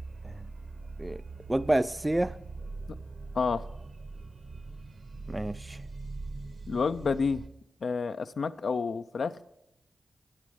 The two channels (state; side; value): normal; both; correlation 0.93